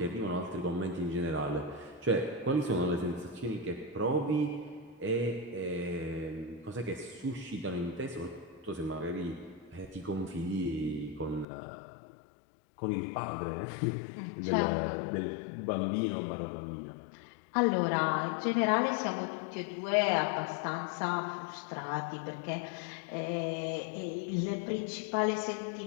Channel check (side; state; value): right; drops out; at 11.5 s